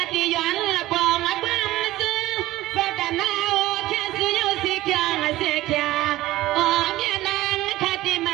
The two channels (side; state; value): left; quieter; 16.6 dB